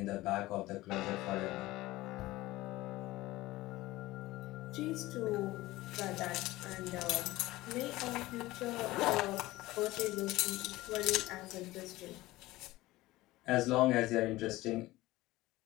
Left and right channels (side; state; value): right; quieter; 18.2 dB